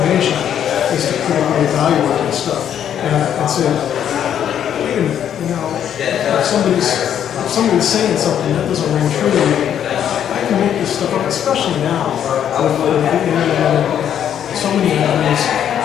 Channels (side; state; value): right; quieter; 9.5 dB